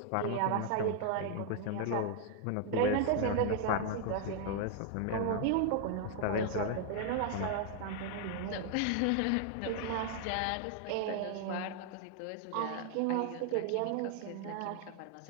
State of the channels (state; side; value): different; both; correlation 0.00